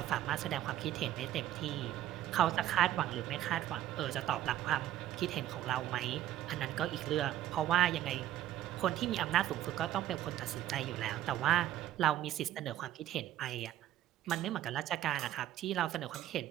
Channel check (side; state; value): left; quieter; 12.6 dB